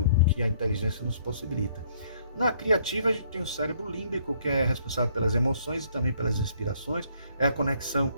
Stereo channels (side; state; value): both; inverted; correlation -0.65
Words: que a inteligência nos possibilita. Na criativa, a gente tem o cérebro límbico, que é responsável pelas emoções e também pelas inspirações, é a conexão